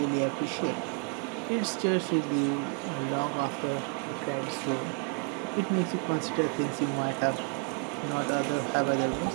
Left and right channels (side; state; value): left; quieter; 39.8 dB